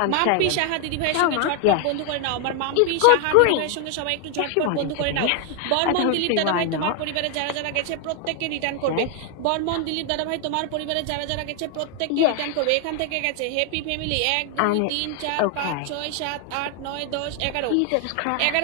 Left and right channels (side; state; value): both; different; correlation 0.00